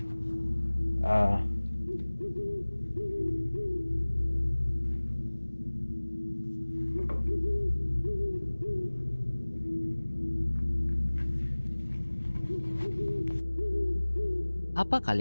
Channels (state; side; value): inverted; both; correlation -1.00